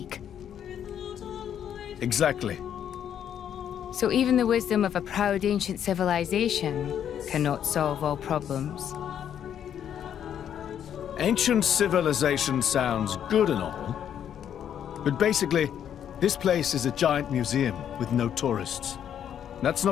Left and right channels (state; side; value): quieter; right; 9.4 dB